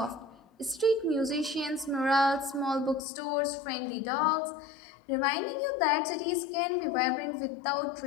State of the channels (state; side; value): drops out; right; at 3.0 s